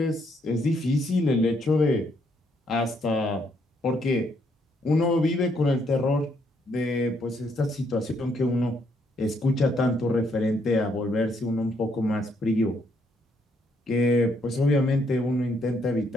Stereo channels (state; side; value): normal; both; correlation 0.72